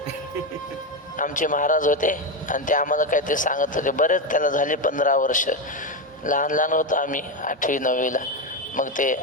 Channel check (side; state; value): both; normal; correlation 0.11